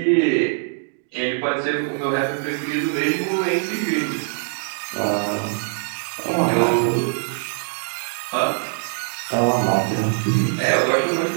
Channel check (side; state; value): left; silent; 64 dB below the other